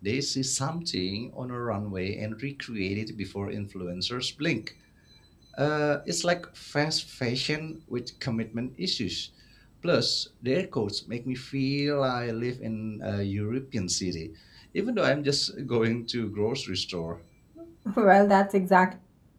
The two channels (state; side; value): identical; both; correlation 1.00